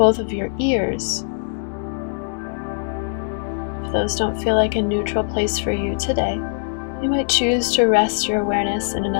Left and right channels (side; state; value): right; silent; digital silence